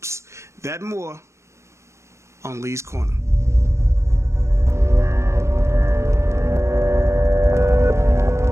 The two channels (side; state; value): left; late; 0.14 ms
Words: That and more on Lee's Corner.